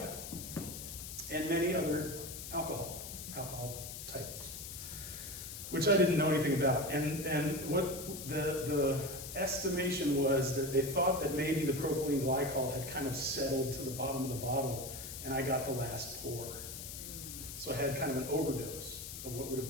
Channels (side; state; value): left; noise; hiss, 9 dB below the sound